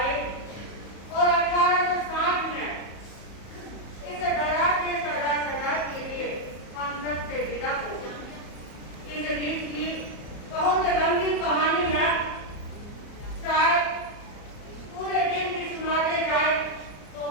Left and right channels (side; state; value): right; late; 34 ms